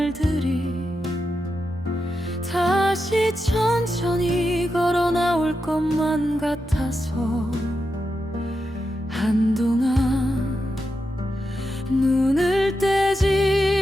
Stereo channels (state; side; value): normal; both; correlation 0.87